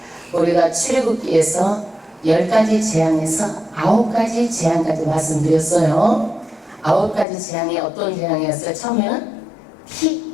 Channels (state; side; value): drops out; right; at 7.2 s